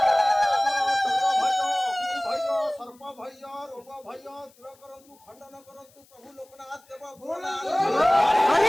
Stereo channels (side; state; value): left; noise; hiss, 30 dB below the sound